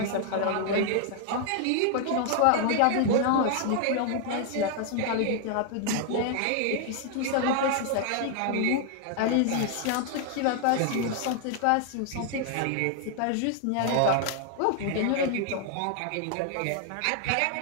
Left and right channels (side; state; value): both; different; correlation 0.00